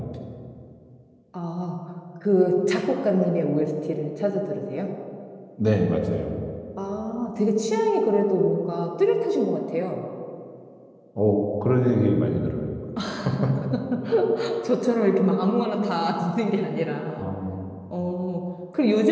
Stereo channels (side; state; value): both; identical; correlation 1.00